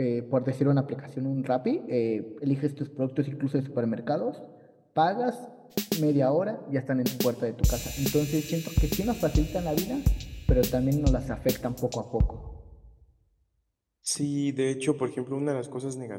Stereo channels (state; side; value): identical; both; correlation 1.00